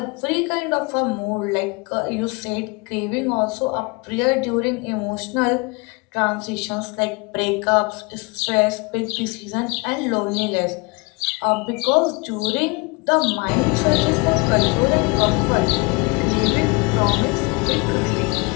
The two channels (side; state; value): right; quieter; 28.7 dB